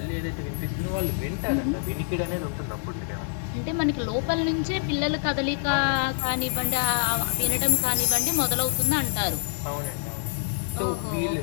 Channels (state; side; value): silent; right; 61 dB below the other